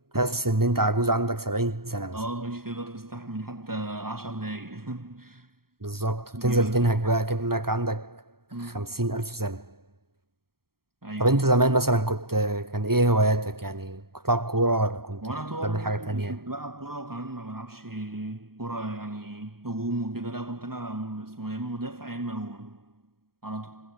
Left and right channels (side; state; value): left; late; 0.94 ms